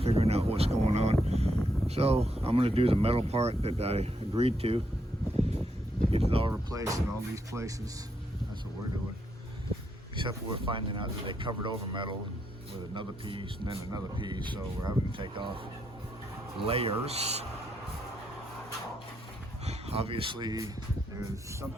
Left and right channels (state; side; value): normal; both; correlation 0.78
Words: figuring out what's going on. So I'm going to do the metal part that I agreed to. Get it all replaced in all these places. That's what we're doing. Except for we're finding out that they covered over metal with another piece and then another piece. So we're having to take off layers. Obviously, there's